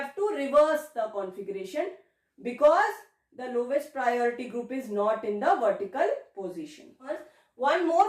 to reverse the configuration, because the lowest priority group is not in the vertical position. One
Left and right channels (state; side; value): identical; both; correlation 1.00